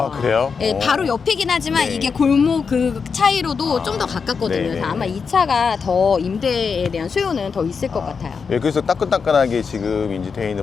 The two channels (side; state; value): right; quieter; 5.6 dB